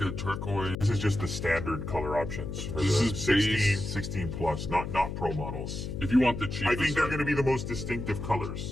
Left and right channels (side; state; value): left; noise; hum, 5 dB below the sound